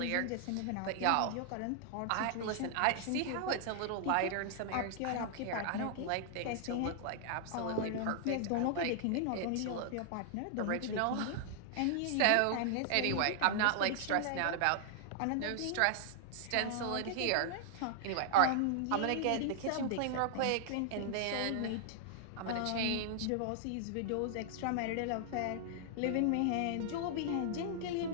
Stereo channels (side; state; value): both; different; correlation -0.01